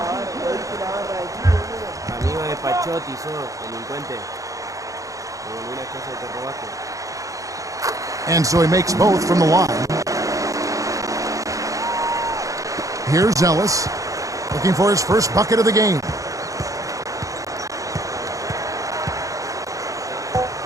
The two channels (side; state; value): left; late; 0.16 ms